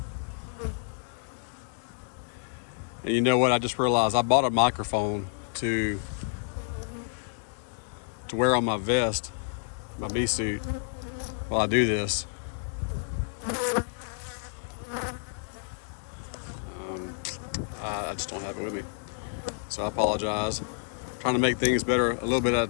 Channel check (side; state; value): right; silent; digital silence